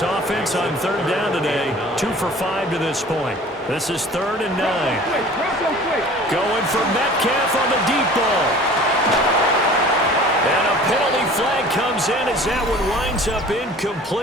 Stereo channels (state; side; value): normal; both; correlation 0.45